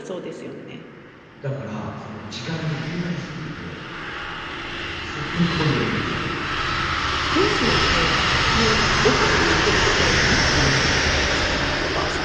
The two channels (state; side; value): identical; both; correlation 1.00